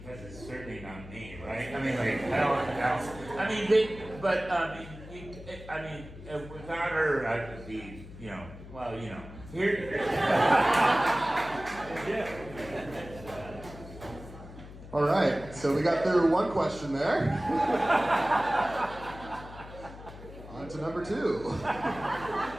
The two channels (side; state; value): left; noise; hum, 15 dB below the sound